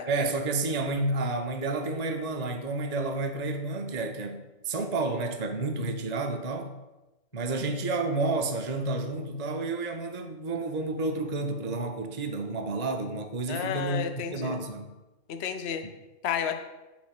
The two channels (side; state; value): right; late; 1.9 ms